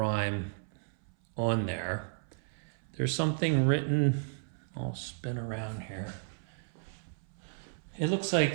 on there. There's something written, I'll spin around here. It looks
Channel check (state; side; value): silent; left; 56 dB below the other